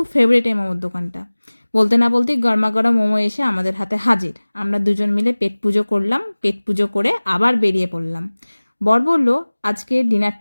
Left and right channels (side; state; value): both; inverted; correlation -1.00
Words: ফেভারিট এই মোমোর দোকানটা। বলতে না বলতেই গরমা গরম মোমো এসে আমাদের হাতে হাজির। আমরা দুজন মিলে পেট পুজো করলাম, পেট পুজো করে আবার বেরিয়ে পড়লাম। বর বলল আজকে